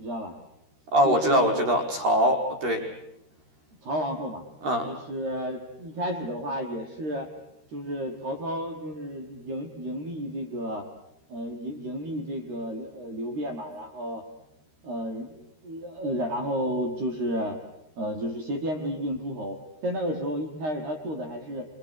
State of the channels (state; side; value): late; left; 13 ms